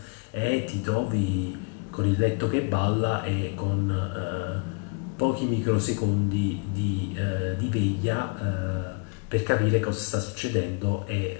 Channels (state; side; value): quieter; right; 34.7 dB